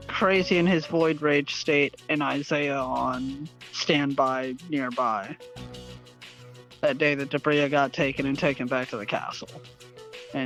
Crazy in his Void Rage state, and Isaiah on standby nearby. That day that Debria got taken and taken back to the castle.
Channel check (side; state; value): both; identical; correlation 1.00